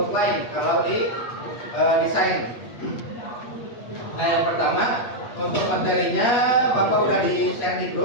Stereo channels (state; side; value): late; right; 8.4 ms